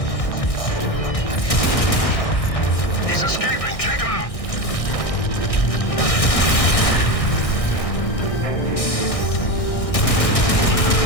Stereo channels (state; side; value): late; right; 1.6 ms